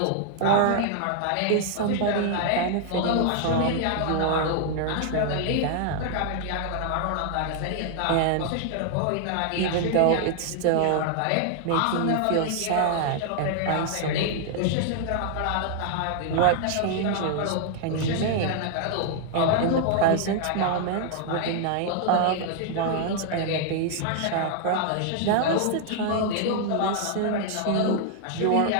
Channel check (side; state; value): both; different; correlation 0.00